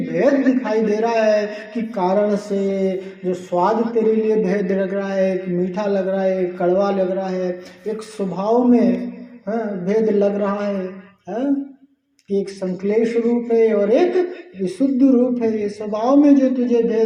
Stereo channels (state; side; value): identical; both; correlation 1.00